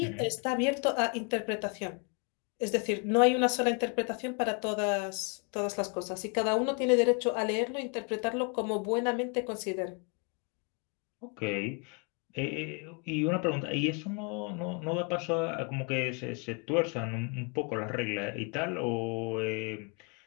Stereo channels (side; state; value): right; quieter; 34.8 dB